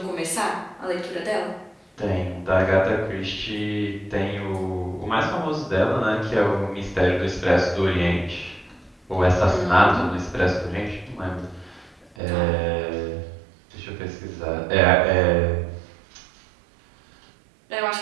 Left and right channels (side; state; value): left; drops out; at 12.2 s